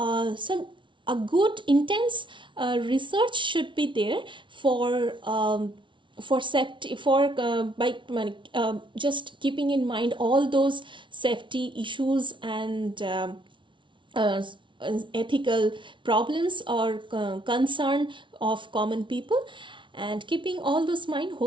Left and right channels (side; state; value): left; late; 0.24 ms